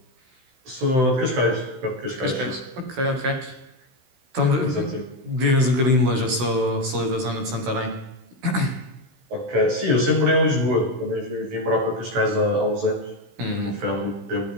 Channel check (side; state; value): left; late; 16 ms